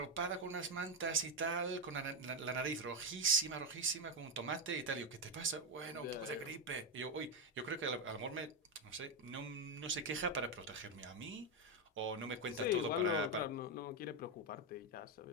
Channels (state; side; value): normal; both; correlation 0.07